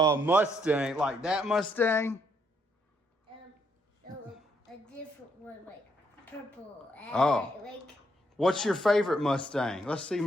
Mustang, like that Mustang? A different one, like purple. Oh. Like, What's your favorite Mustang? Let's see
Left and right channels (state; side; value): normal; both; correlation 0.74